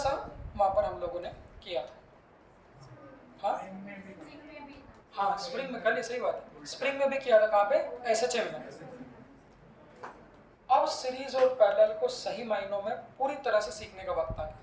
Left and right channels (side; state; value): both; identical; correlation 1.00